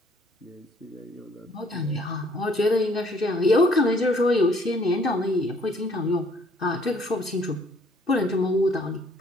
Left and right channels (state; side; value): normal; both; correlation 0.62